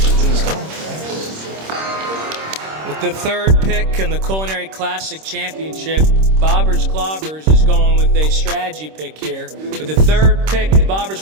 go. With the third pick in the Culinary Classic Championship, Bobbers Clobbers is going with a strategy pick here. With the third pick, the Bobbers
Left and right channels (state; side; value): late; left; 26 ms